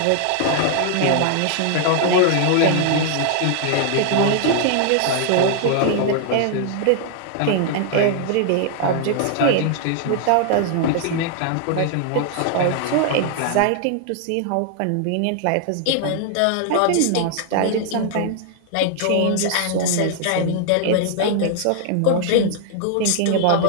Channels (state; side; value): different; both; correlation 0.00